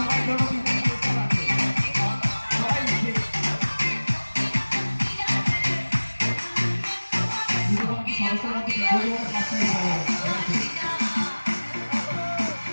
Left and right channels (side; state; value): both; inverted; correlation -1.00